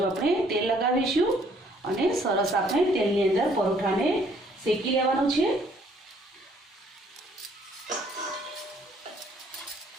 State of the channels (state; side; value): normal; both; correlation 0.63